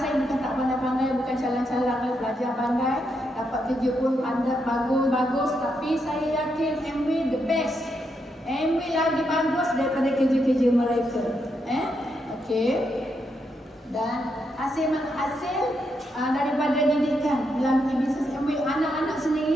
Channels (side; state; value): both; normal; correlation 0.81